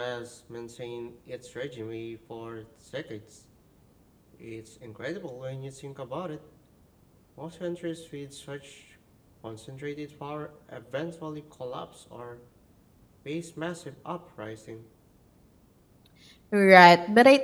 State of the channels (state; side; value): identical; both; correlation 1.00